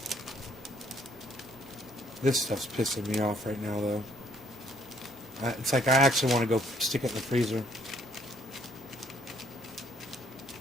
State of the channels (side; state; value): both; normal; correlation 0.65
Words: This stuff's pissing me off right now though. It's like I actually want to go stick it in the freezer.